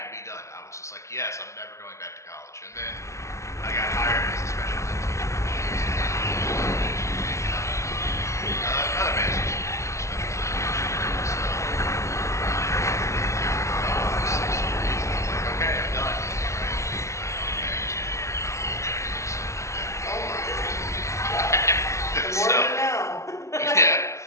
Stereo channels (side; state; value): right; late; 0.14 ms